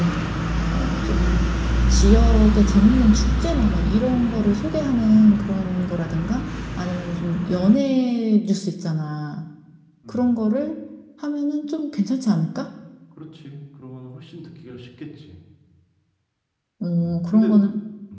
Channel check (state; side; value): identical; both; correlation 1.00